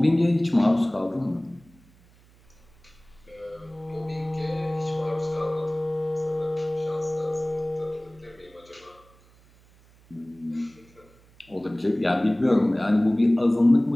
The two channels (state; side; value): noise; right; hum, 28 dB below the sound